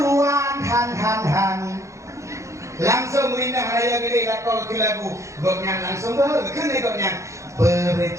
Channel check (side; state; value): left; late; 0.15 ms